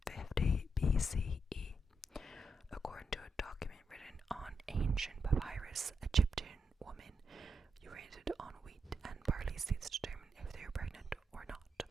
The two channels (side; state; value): both; normal; correlation 0.82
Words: BCE. According to a document written on ancient papyrus, Egyptian women urinated on wheat and barley seeds to determine if they were pregnant or not,